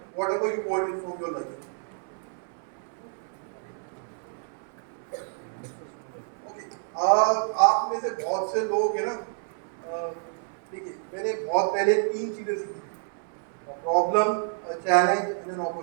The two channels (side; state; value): left; silent; 59 dB below the other